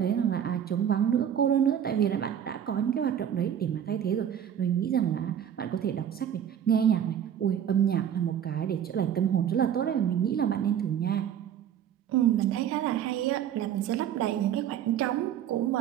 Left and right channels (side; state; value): left; quieter; 9.5 dB